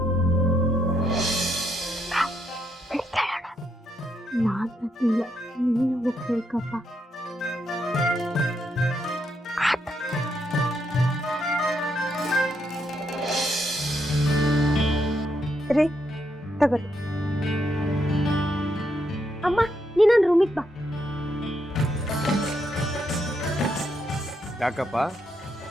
ನಾನು ನೀನು ಹೋಗ್ಬೇಕಪ್ಪ. ರೀ ತಗೋರಿ. ಅಮ್ಮ ನೀ ನನ್ನ ರೂಮಿಗೆ ಬಾ. ಯಾಕಪ್ಪ,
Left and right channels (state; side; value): normal; both; correlation 0.78